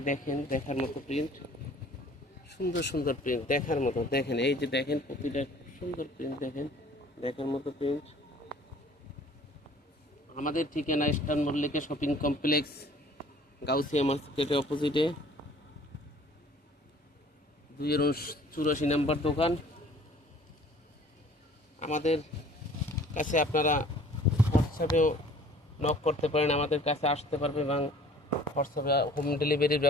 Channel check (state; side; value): normal; both; correlation 0.52